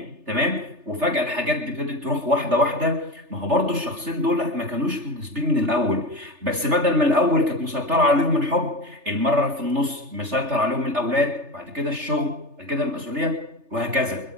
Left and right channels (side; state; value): left; late; 3.3 ms